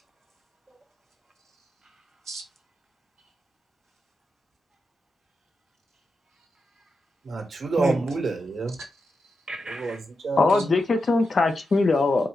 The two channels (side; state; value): both; normal; correlation 0.88